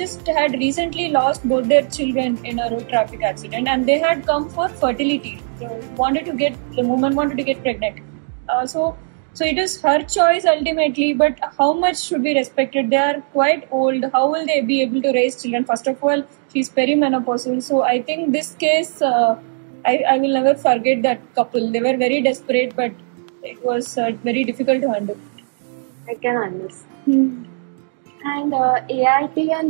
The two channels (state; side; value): silent; left; digital silence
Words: had recently lost both their children in a road traffic accident, and they had come for fertility. The woman wanted to get pregnant. So it is her choice ultimately, but how much should be respected? They are quite old. How will they be able to raise children? First of all, she's perimenopausal. So I think this case, I will never forget that couple. They were very desperate, but it was very difficult to handle. I can understand. And ART